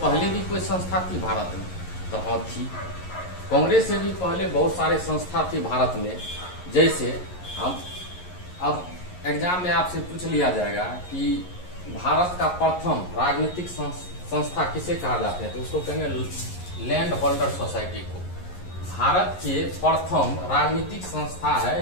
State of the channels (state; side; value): late; right; 11 ms